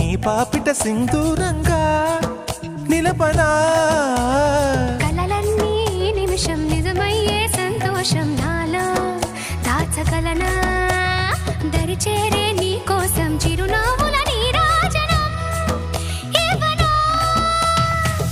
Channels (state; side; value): identical; both; correlation 1.00